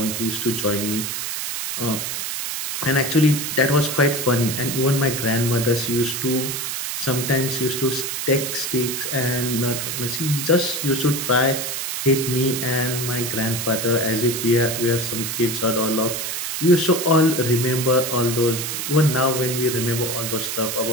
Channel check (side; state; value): right; noise; hiss, 3 dB below the sound